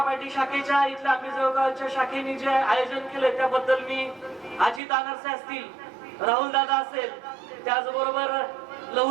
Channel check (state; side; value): drops out; left; at 4.8 s